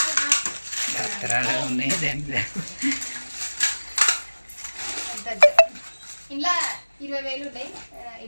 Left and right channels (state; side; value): inverted; both; correlation -1.00